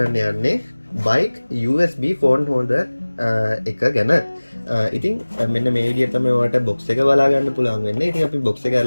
යන්නේ bike USB phone holder එක ගැන. ඉතින් මෙන්න මේ විදිහට තමයි ඔයාලට box එක බලා ගන්න පුළුවන් වෙන්නේ. ඉතින් අපි box එක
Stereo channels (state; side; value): inverted; both; correlation -1.00